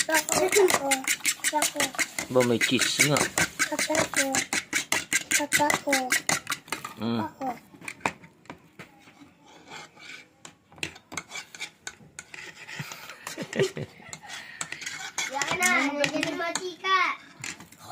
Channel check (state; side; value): identical; both; correlation 1.00